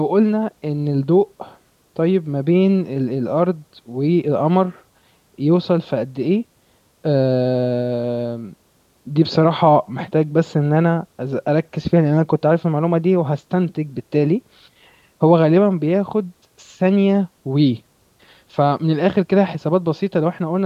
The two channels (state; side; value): identical; both; correlation 1.00